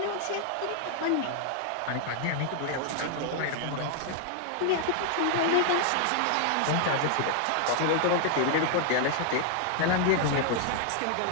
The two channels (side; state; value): both; different; correlation 0.00